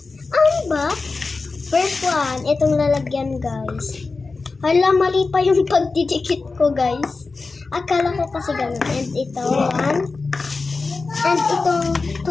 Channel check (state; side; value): quieter; right; 4.0 dB